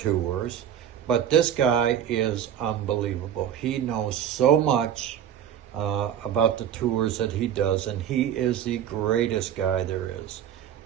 but this guy is unbelievable. He knows so much about the tours that he does, and he is the greatest guy there is.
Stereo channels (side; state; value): left; quieter; 9.6 dB